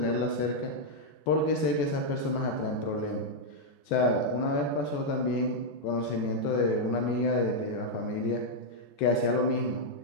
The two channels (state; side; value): late; right; 14 ms